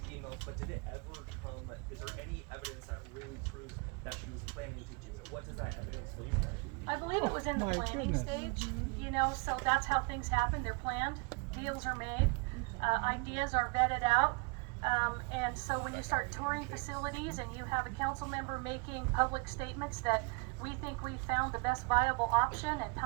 emails, but did it ever come, is there any evidence that really proves that she was planning to do it? What does that evidence look like? I believe it was in the planning stage, so that's how things happen. They're planned, deals are made, ideas are vetted out, And so when you start touring facilities and you have a council member making public statements that we think we found the best viable option and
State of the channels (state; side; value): quieter; left; 29.9 dB